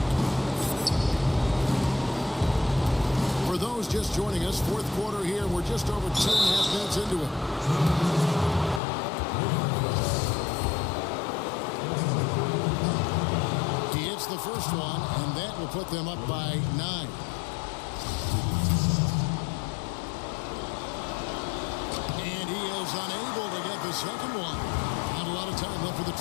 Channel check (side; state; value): right; drops out; at 8.8 s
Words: For those just joining us, fourth quarter here. We're just over 2.5 minutes into it. The first one, and that will put them up by 9. And he is unable to get the second one. Not a lot of time left for the